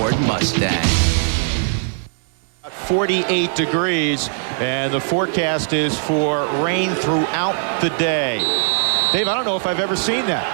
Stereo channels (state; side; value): silent; left; 60 dB below the other